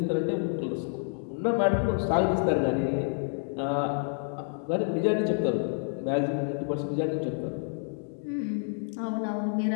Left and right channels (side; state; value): right; silent; 59 dB below the other